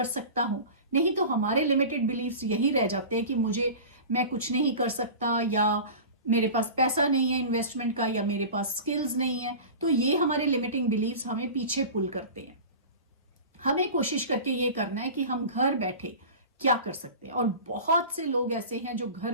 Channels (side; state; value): both; inverted; correlation -0.34